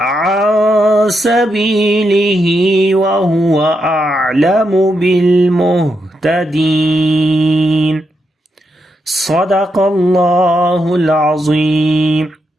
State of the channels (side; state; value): both; normal; correlation 0.83